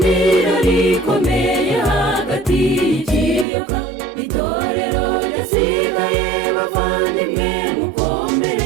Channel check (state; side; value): drops out; left; at 3.5 s